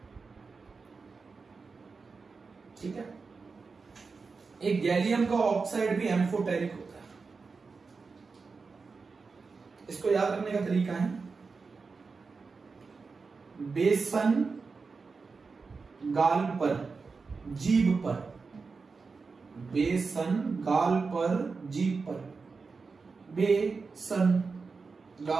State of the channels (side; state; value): left; quieter; 4.6 dB